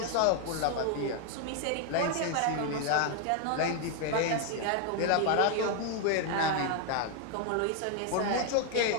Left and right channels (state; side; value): different; both; correlation 0.00